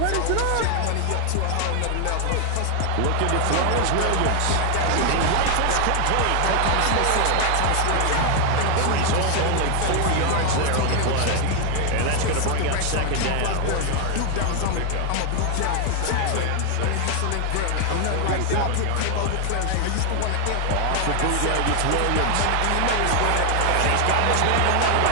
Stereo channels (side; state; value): both; different; correlation 0.00